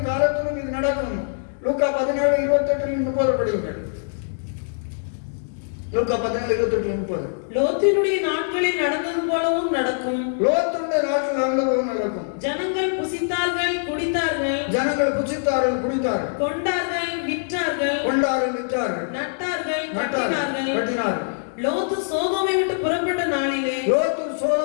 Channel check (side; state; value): right; silent; digital silence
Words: காலத்திலும் இது நடக்கும். லூக்கா 17:28-30 படியுங்கள். லூக்கா 17:28-30. லோத்தினுடைய நாட்களில் நடந்தது போலவும் நடக்கும். லோத்தினுடைய நாட்களில் நடந்தது போலவும் நடக்கும். ஜனங்கள் புசித்தார்கள், குடித்தார்கள். ஜனங்கள் புசித்தார்கள், குடித்தார்கள். கொண்டார்கள், விற்றார்கள். கொண்டார்கள், விற்றார்கள். நட்டார்கள், கட்டினார்கள். லோத்து சோதோமை விட்டு புறப்பட்ட நாளிலே